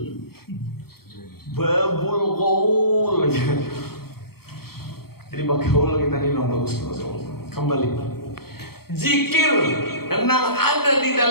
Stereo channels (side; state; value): right; late; 0.95 ms